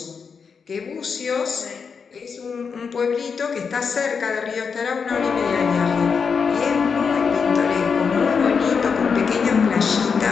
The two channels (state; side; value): quieter; right; 5.9 dB